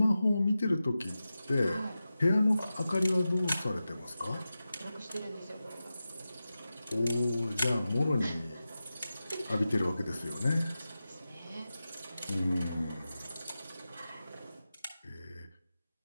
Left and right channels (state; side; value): inverted; both; correlation -0.93